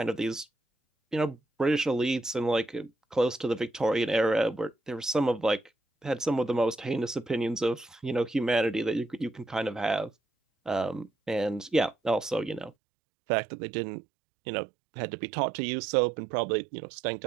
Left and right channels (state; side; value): drops out; left; at 12.7 s